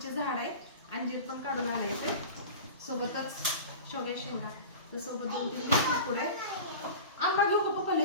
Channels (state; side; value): inverted; both; correlation -0.33